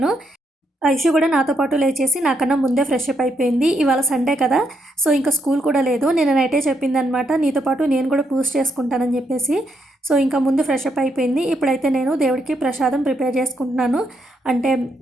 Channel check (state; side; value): normal; both; correlation 0.77